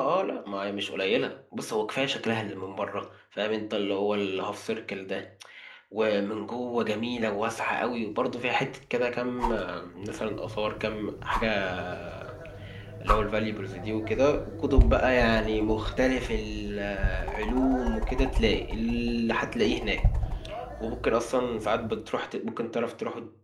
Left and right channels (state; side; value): identical; both; correlation 1.00